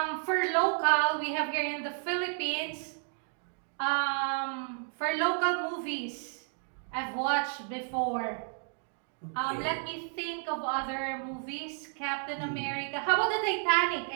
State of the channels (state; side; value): silent; left; 57 dB below the other